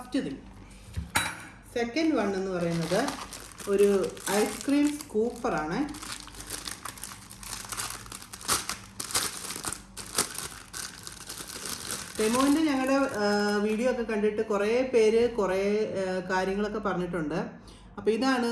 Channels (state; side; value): identical; both; correlation 1.00